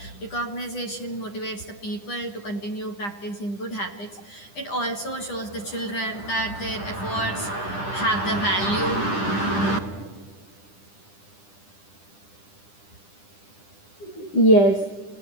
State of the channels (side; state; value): right; late; 10 ms